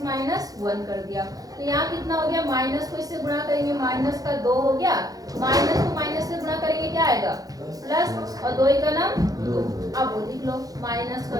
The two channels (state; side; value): late; left; 0.18 ms